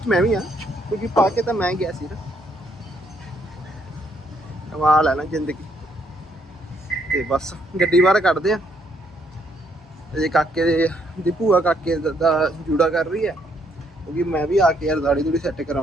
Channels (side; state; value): both; normal; correlation 0.71